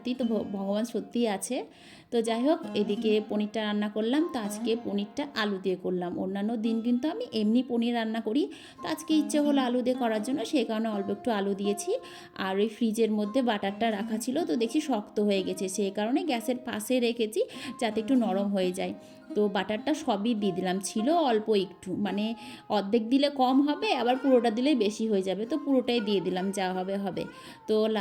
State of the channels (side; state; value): both; identical; correlation 1.00